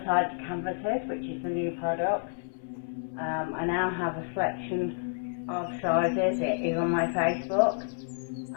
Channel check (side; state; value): right; silent; 58 dB below the other